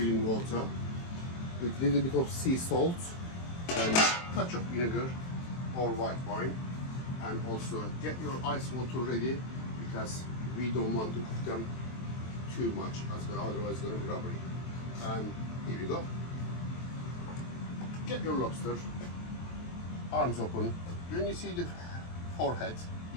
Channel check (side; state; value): right; late; 23 ms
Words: water with a little bit of sea salt and touch of vinegar or white wine, and also get your ice water ready because we don't want to cook them too much as well, otherwise it's going to be rubbery. And here we go. Get your lobster, arms open. When you see the forehead,